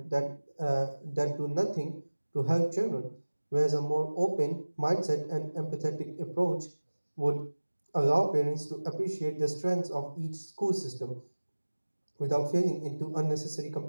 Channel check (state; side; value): inverted; both; correlation -1.00